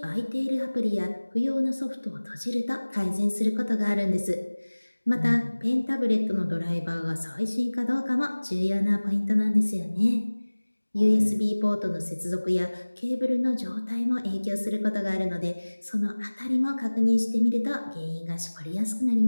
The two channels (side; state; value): both; inverted; correlation -1.00